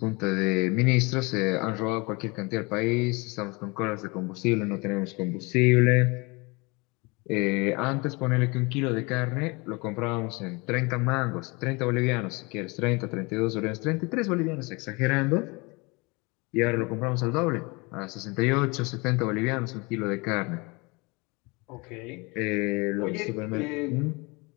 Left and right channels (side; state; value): right; quieter; 27.3 dB